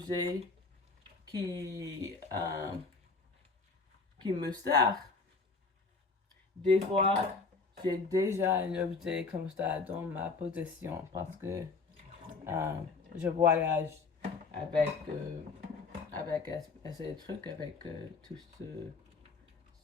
qui me sert, des fois j'ai déjà un objet comme ça dans ma possession parce que je voyage avec ces trucs, avec tout ce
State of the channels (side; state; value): right; quieter; 4.3 dB